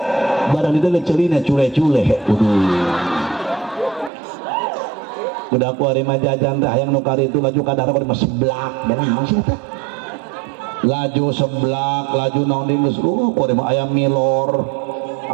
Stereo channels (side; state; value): left; drops out; at 4.1 s